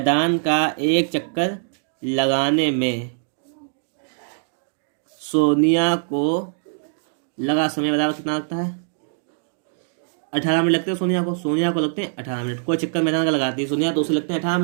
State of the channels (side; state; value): left; silent; digital silence